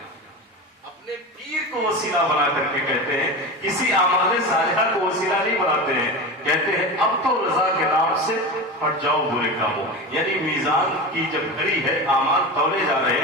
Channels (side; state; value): both; normal; correlation 0.25